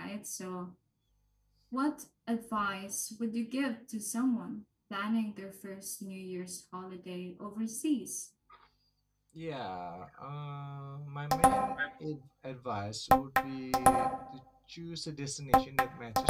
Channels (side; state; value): both; identical; correlation 1.00